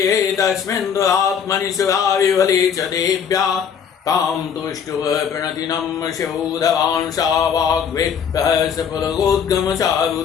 तस्मिन् दुरात्मनि शिवाविवले च देव्या तां तुष्टुव प्रणतिनं शिवोधवान् सा वाग्वे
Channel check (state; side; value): quieter; right; 7.4 dB